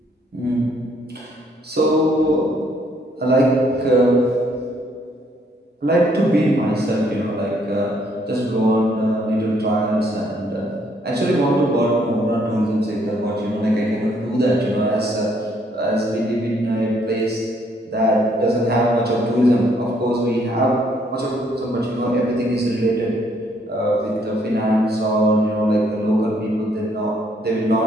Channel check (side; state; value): both; normal; correlation 0.68